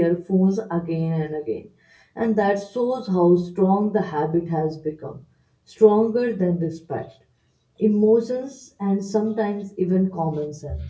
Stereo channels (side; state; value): both; identical; correlation 1.00